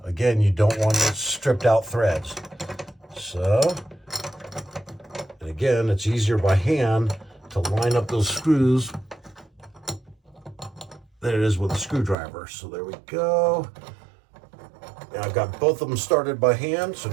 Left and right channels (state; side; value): drops out; left; at 12.2 s